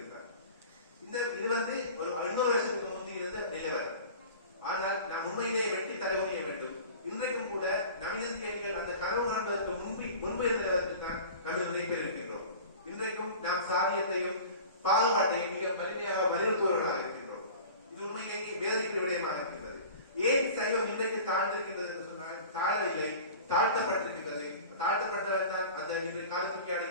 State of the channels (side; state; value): both; inverted; correlation -0.39